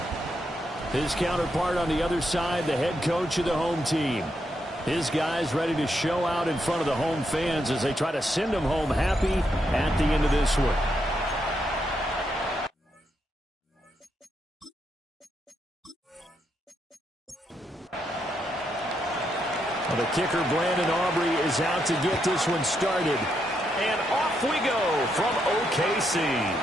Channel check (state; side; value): normal; both; correlation 0.80